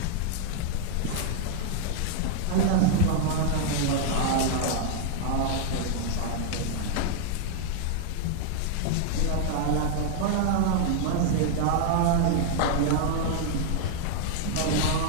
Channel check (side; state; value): both; different; correlation 0.00